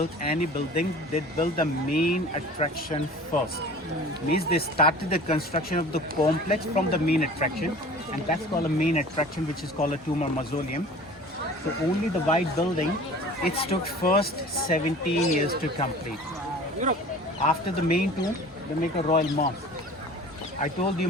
any building, they build the main attraction first. Means they started the construction of the complex from the main attraction, and that's called a main attraction, which is called a tomb or mausoleum. So only the white building, it took first 17 years to complete. After the main tomb, they make a royal mosque. I told you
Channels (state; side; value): normal; both; correlation 0.43